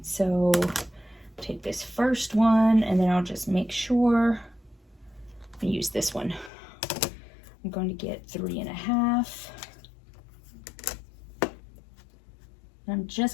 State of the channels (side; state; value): right; drops out; at 6.5 s